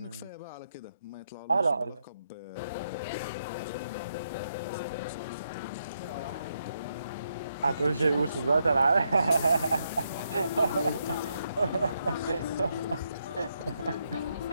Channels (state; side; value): inverted; both; correlation -0.80